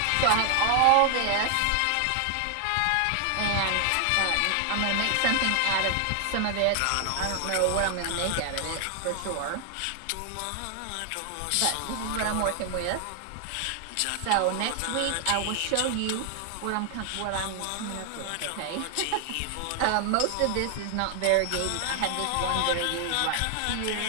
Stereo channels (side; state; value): both; different; correlation 0.00